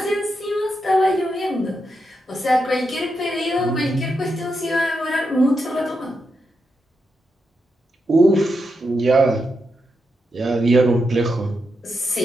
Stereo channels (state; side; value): normal; both; correlation 0.85